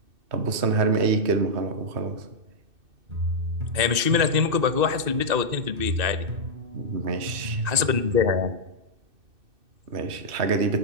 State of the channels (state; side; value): late; left; 2.6 ms